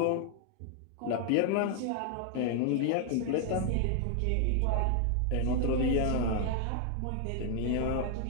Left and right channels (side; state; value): both; different; correlation 0.00